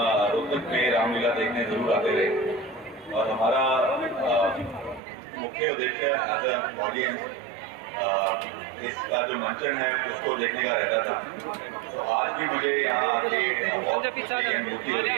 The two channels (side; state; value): left; drops out; at 5.0 s